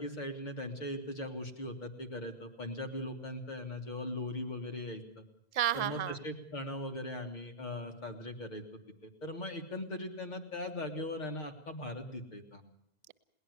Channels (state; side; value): late; right; 2.0 ms